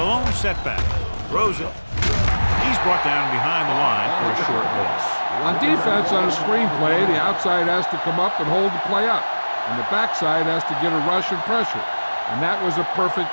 lone setback. Throws it. He's brought down behind the line for a short loss. On defense, on a screen play, the outside has to come up and hold the play up, and the backside has to get a rush and pressure, and that was a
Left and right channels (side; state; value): both; inverted; correlation -1.00